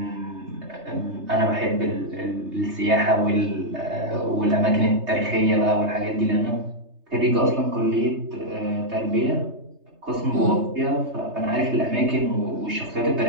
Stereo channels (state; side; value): late; left; 3.3 ms